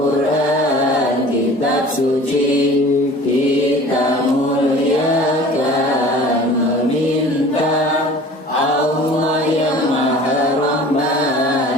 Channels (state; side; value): normal; both; correlation 0.44